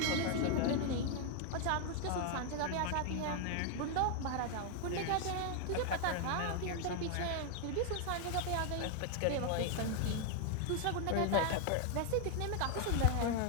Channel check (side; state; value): both; different; correlation 0.00